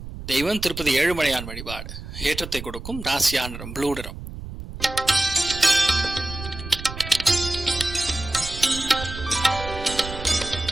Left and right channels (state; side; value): noise; right; rumble, 11 dB below the sound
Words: தெய்வம் திருப்பதி ஏழுமலையான் வழிபாடு. ஏற்றத்தை கொடுக்கும். ராசியா நிறம் ப்ளூ நிறம்.